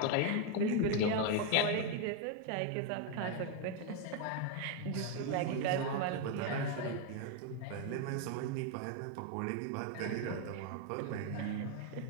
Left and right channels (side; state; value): both; different; correlation 0.01